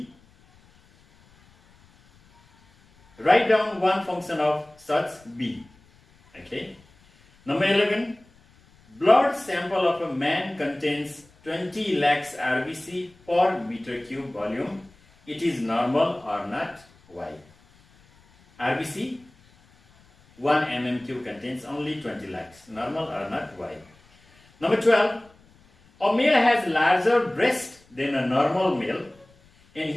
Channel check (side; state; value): left; noise; rumble, 30 dB below the sound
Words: Write down 1 function of such bee. Okay. Number 11. Blood sample of a man contains 20 lakhs RBC per meter cube volume. It is normal or not? Why? RBC 1 mm3 contains only 20 lakhs. Normal or not? Why? Number 12. A male has larger breast than a normal male and